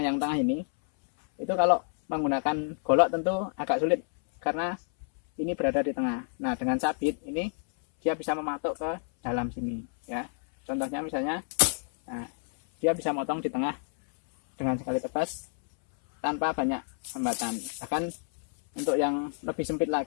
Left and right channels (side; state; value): right; silent; 59 dB below the other